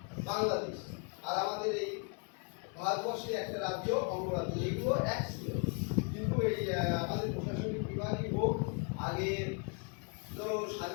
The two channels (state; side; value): quieter; right; 37.4 dB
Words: বাংলাদেশ, আর আমাদের এই ভারতবর্ষের একটা রাজ্য অঙ্গরাজ্য, এগুলো এক ছিল। কিন্তু এই আমাদের প্রশাসনিক বিভাগই হোক, আগে ধরো